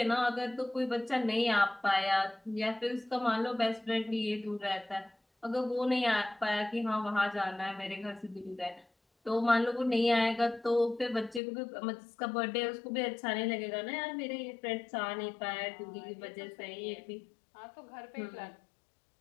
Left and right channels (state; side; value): drops out; right; at 11.4 s